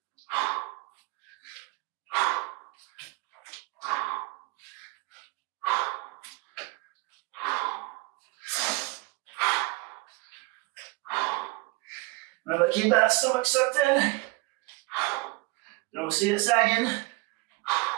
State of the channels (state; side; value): quieter; left; 24.8 dB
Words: Remember, keep that stomach sucked in. Don't see it sagging.